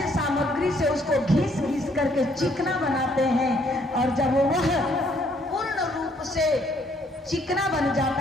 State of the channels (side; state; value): both; normal; correlation 0.66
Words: सामग्री से उसको घिस घिस करके चिकना बनाते हैं और जब वह पूर्ण रूप से चिकना बन